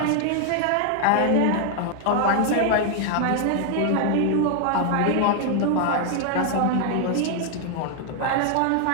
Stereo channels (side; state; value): both; different; correlation 0.00